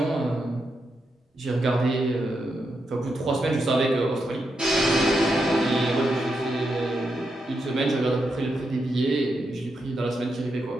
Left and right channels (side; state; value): both; normal; correlation 0.84